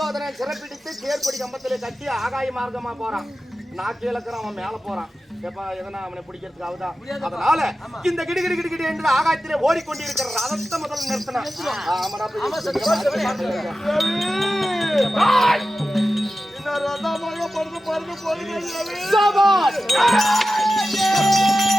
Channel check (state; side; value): normal; both; correlation 0.93